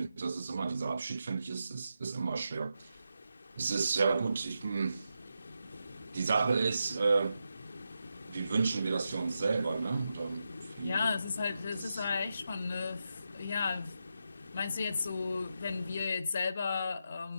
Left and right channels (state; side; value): inverted; both; correlation -0.87